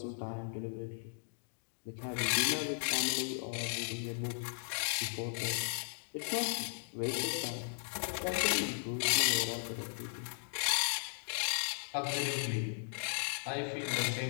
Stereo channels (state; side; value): silent; right; digital silence